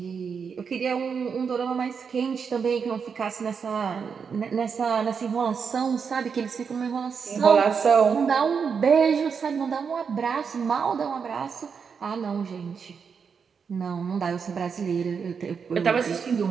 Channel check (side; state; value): left; quieter; 6.2 dB